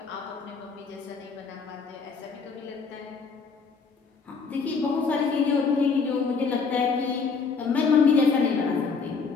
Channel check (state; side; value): quieter; right; 5.0 dB